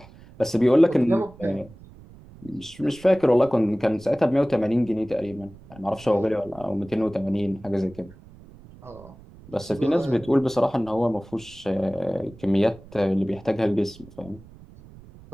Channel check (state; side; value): noise; right; rumble, 21 dB below the sound